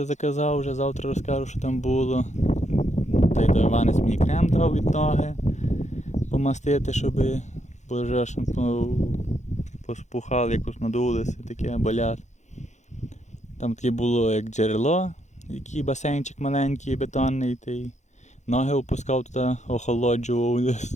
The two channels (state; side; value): late; right; 0.34 ms